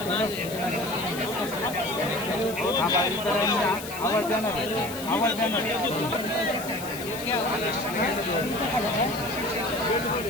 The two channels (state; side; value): noise; left; hiss, 12 dB below the sound